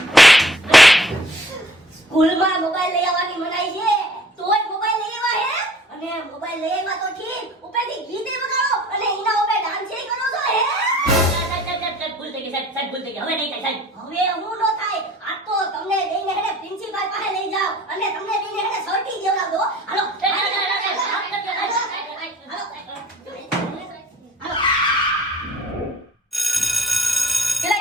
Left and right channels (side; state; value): both; normal; correlation 0.53